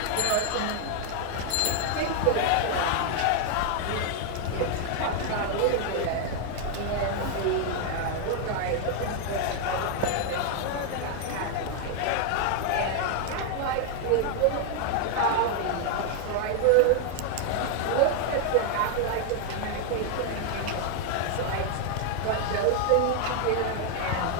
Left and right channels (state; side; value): different; both; correlation 0.00